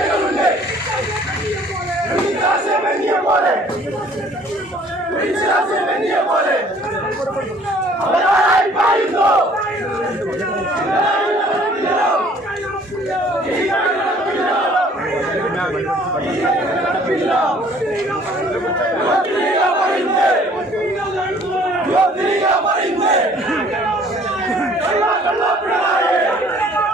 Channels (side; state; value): both; normal; correlation 0.56